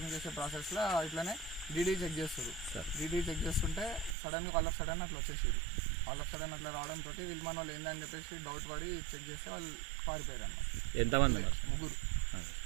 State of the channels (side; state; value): left; drops out; at 4.2 s